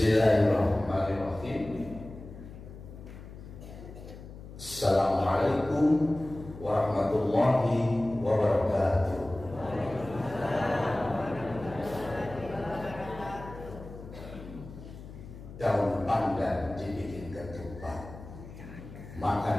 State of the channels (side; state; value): left; noise; hum, 15 dB below the sound